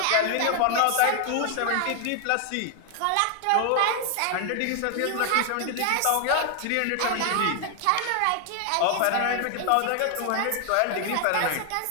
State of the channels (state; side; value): different; both; correlation 0.00